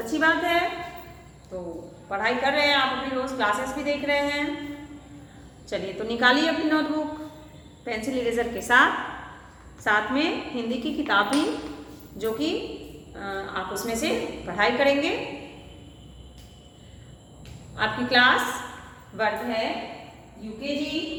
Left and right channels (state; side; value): identical; both; correlation 1.00